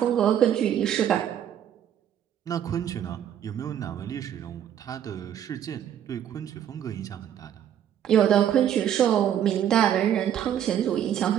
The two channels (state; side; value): quieter; left; 10.0 dB